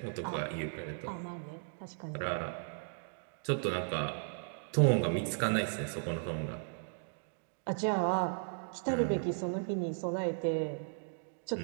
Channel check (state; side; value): silent; left; digital silence